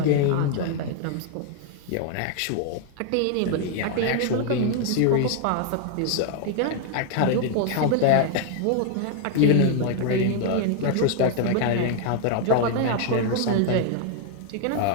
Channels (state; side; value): different; both; correlation 0.00